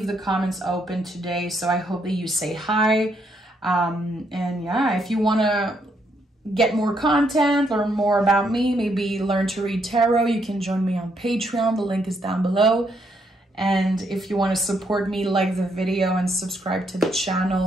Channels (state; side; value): normal; both; correlation 0.74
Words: the comments open today, so I hope that you say hi. And yeah, if you want to get more content, learn more about me, maybe learn to read tarot, you can join me on Patreon. The link is down below. And if you want to support me, like the video and subscribe to the